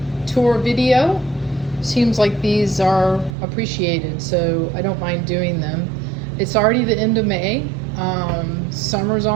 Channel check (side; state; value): left; drops out; at 3.3 s